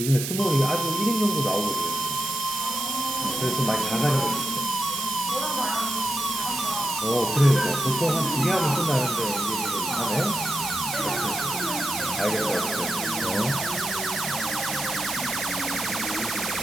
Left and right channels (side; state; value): right; noise; hiss, 4 dB below the sound